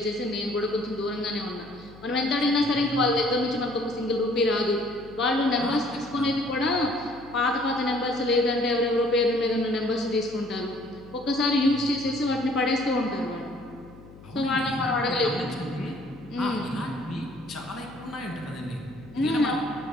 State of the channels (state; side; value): noise; left; hum, 20 dB below the sound